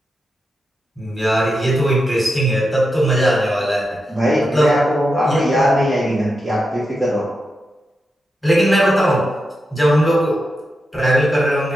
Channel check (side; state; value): both; normal; correlation 0.87